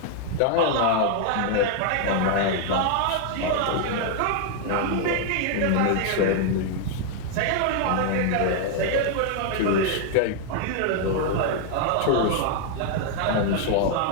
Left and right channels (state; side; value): different; both; correlation 0.00